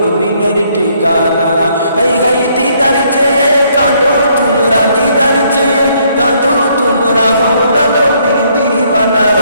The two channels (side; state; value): both; inverted; correlation -0.68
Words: ঠিকানা হাই হাই দিদার চেয়ে কাঁদো তোমরা দিদার চেয়ে কাঁদো তোমরা হও না নবীর দিওয়ানা